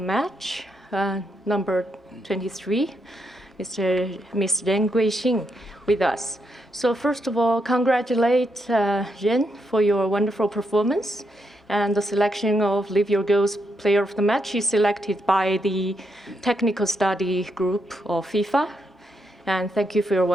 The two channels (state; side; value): normal; both; correlation 0.80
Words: number 23, Mr. Ren Guixing, with us. So first of all, congratulate Ren for your wonderful performance. And the selection of Live Your Goals Player of the Match is selected by the technical study group of FIFA. And thank you for your